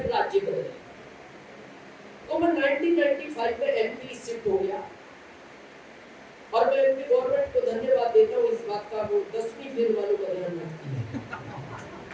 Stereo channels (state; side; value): identical; both; correlation 1.00